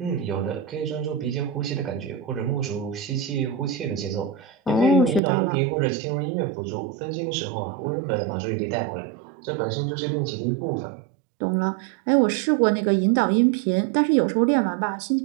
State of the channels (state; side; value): drops out; left; at 5.2 s